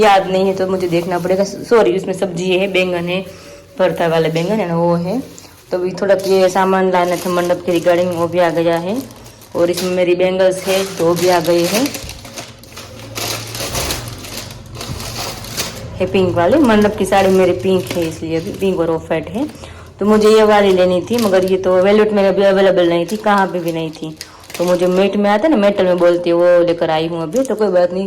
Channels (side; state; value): both; identical; correlation 1.00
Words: याद नहीं है, तो मुझे देखना पड़ेगा। सॉरी, इसमें सब्जी है, बैंगन है, भरता वाले बैंगन है ना वो है। तो अभी थोड़ा ये सामान लाना था मंडप के रिगार्डिंग, वो भी आ गया है। और इसमें मेरी बैंगल्स है तो भी आ गई है पिंक वाली। मंडप की साड़ी मेरी पिंक है, इसलिए अभी पिंक और ऑफ वाइट है। तो मुझे ये वाली लेनी थी, मगर ये तो वेलवेट में अभी अवेलेबल नहीं थी, कहाँ पे भी नहीं थी। तो मुझे मेट में आता है ना, मेटल में बोलती है, वो लेकर आई हूँ अभी। तो कोई बात नहीं,